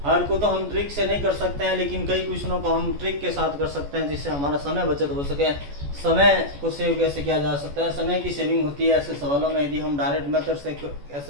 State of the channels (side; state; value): left; late; 14 ms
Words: हर को तो हम ट्रिक से नहीं कर सकते हैं, लेकिन कई क्वेश्चनों को हम ट्रिक के साथ कर सकते हैं जिससे हमारा समय बचत हो सके। समय को सेव कैसे किया जा सकता है, समय की सेविंग होती है ऐसे सवालों में। यदि हम डायरेक्ट मेथड से